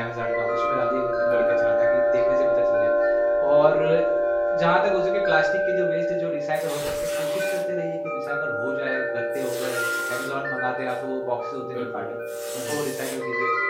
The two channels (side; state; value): both; identical; correlation 1.00